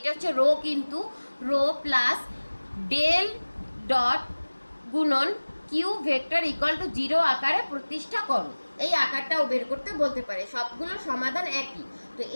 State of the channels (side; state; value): both; inverted; correlation -1.00